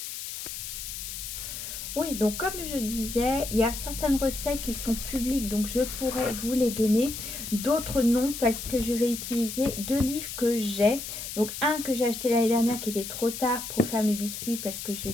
Oui, donc comme je disais, il y a certaines recettes qui sont publiques, donc je pourrais vous les donner. D'autres non, parce que je vais utiliser deux livres que j'ai. Donc un que j'ai acheté l'année dernière qui était trop tard pour faire mes biscuits, parce que je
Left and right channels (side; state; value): left; noise; hiss, 7 dB below the sound